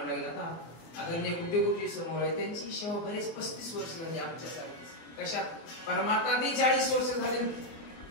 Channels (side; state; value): right; late; 24 ms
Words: लागेल. आता आदरणीय गुड्डेगुड्डी समोर आहे, त्यांची सेवा बरेच 35 वर्ष झाली आमच्यासारखी. कशात? परमार्थात 40 वर्ष झाली,